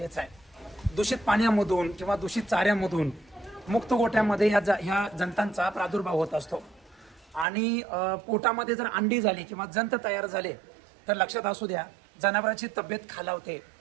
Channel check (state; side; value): drops out; left; at 7.5 s